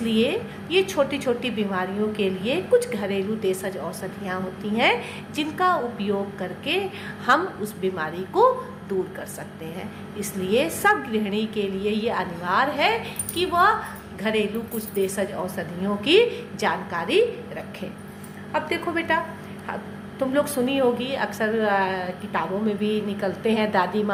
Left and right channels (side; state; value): both; identical; correlation 1.00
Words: ये छोटी छोटी बीमारियों के लिए कुछ घरेलू देशज औषधियाँ होती हैं जिनका उपयोग करके हम उस बीमारी को दूर कर सकते हैं। इसलिए सब गृहिणी के लिए ये अनिवार्य है कि वह घरेलू कुछ देशज औषधियों की जानकारी रखें। अब देखो बेटा, तुम लोग सुनी होगी, अक्सर किताबों में भी निकलते हैं दादी